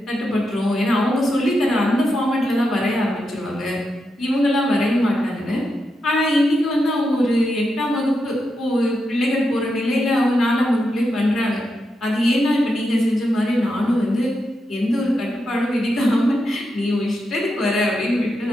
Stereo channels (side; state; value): both; normal; correlation 0.86